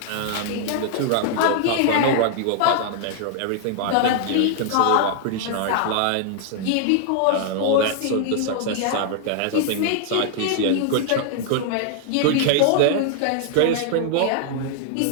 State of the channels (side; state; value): both; different; correlation -0.01